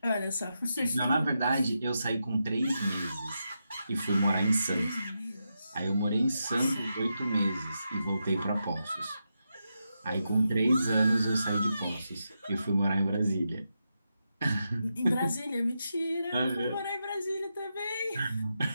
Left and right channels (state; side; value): inverted; both; correlation -0.87